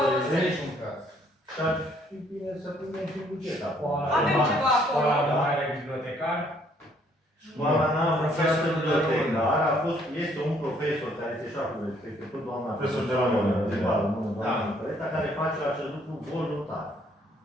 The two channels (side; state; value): both; normal; correlation 0.65